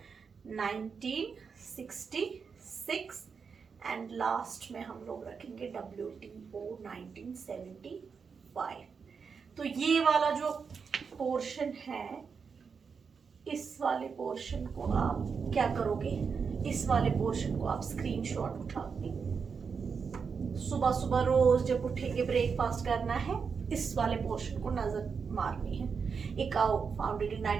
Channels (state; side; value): quieter; left; 5.8 dB